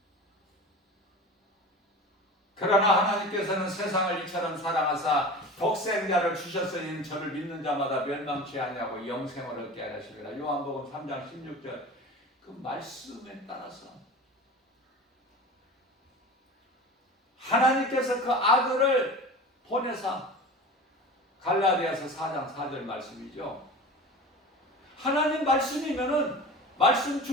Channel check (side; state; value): both; normal; correlation 0.34